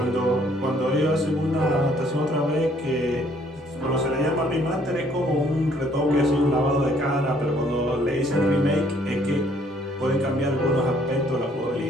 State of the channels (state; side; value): normal; both; correlation 0.63